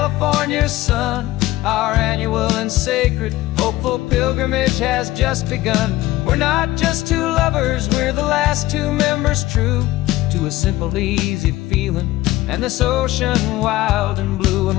sun. Our annual and sacred hopeful pilgrimage has just begun. We're not just two lovers, we're the last two members true to a simple, easy feeling and this ocean wild and blue. And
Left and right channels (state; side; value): quieter; right; 16.9 dB